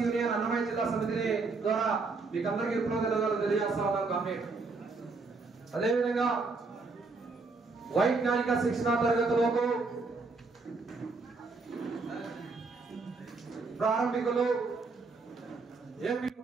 యూనియన్ అన్నమయ్య జిల్లా సమితి ద్వారా మీకు అందరికీ విప్లవ ధన్యవాదాలు తెలియజేస్తా ఉన్నాం. కామ్రేడ్, అదేవిధంగా వైజ్ఞానిక శిక్షణా తరగతులకు ప్రారంభికులు ఏపీ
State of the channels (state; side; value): quieter; left; 4.0 dB